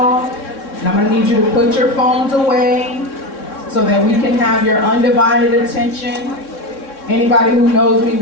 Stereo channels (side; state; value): right; late; 3.6 ms